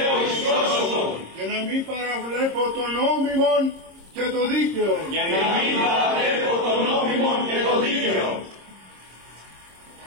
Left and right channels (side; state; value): left; late; 26 ms